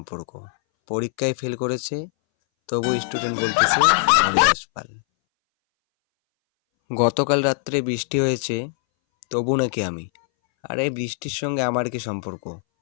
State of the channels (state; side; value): silent; right; 62 dB below the other